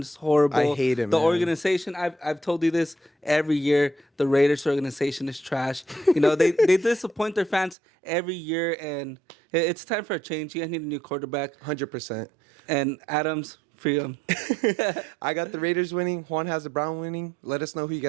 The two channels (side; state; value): left; drops out; at 7.8 s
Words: horrible. I hate it, The man. organization, I've told you this every year, the Raiders organization is trash. They disappoint their fans every year, and it's time for a change. You guys need a new quarterback. 100%. And Adams, free him. I got the Raiders winning. Juan has the Brown winning. Let us know who you